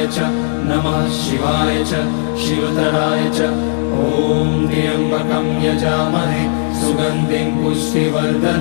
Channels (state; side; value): silent; right; digital silence